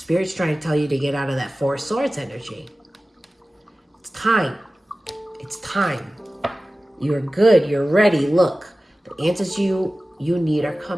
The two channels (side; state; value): both; normal; correlation 0.96